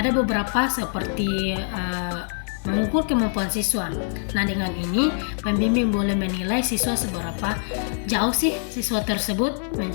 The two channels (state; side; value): silent; right; digital silence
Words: beberapa seperti mengukur kemampuan siswa. Nah, dengan ini pembimbing boleh menilai siswa seberapa jauh sih siswa tersebut